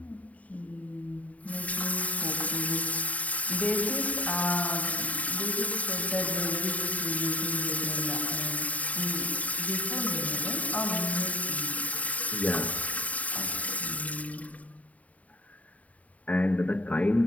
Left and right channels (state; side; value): late; right; 0.070 ms